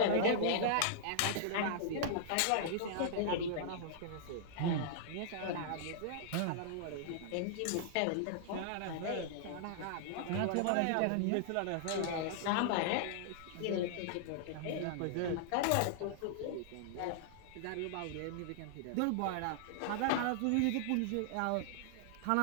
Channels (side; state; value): both; different; correlation -0.01